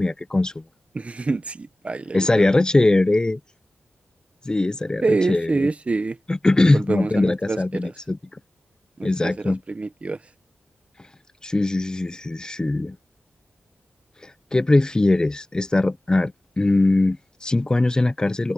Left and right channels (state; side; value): normal; both; correlation 0.97